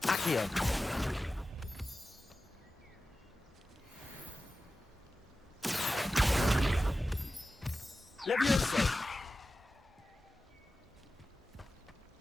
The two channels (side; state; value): both; normal; correlation 0.94